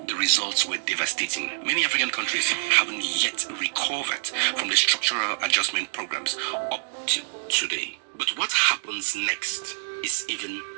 The results were devastating. Many African countries haven't yet recovered from the structural adjustment programs up to today. But what happens next is even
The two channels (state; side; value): silent; left; digital silence